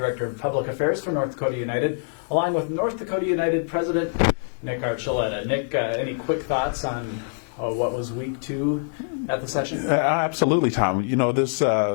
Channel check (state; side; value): silent; right; digital silence